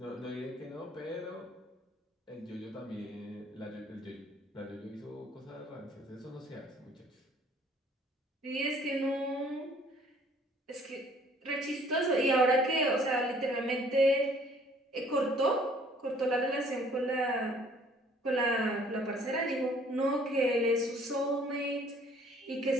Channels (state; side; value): normal; both; correlation 0.58